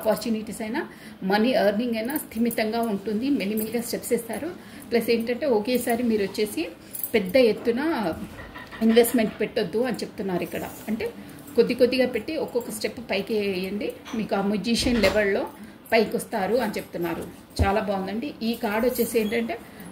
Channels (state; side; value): identical; both; correlation 1.00